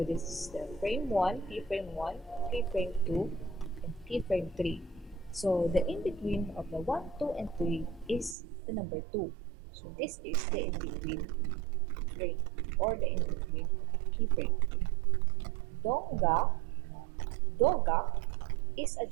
this is the frame 1, keyframe 1, keyframe 2, and keyframe 3. So the in-between of the 1, 2, and 3 is the number 2. So this is the in-between frame or the in-between keyframe. Donga, doga is a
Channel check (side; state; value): left; drops out; at 8.3 s